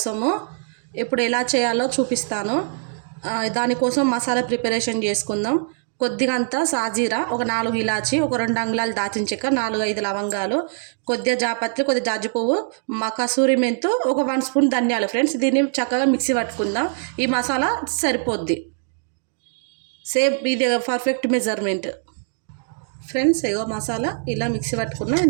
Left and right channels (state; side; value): silent; left; digital silence